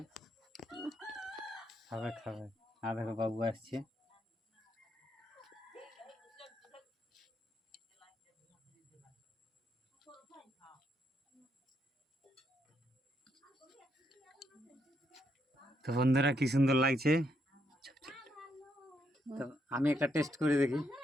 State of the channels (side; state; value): both; normal; correlation 0.77